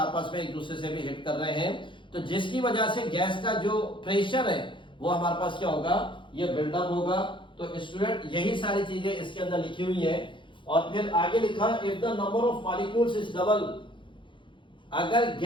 में एक दूसरे से भी हिट कर रहे हैं। तो जिसकी वजह से गैस का जो प्रेशर है वो हमारे पास क्या होगा? ये बिल्डअप होगा। तो स्टूडेंट यही सारी चीजें इसके अंदर लिखी हुई है। और फिर आगे लिखा if the number of molecules is double. अगर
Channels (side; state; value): right; late; 0.24 ms